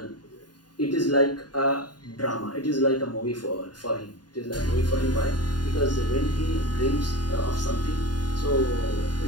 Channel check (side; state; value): right; late; 0.70 ms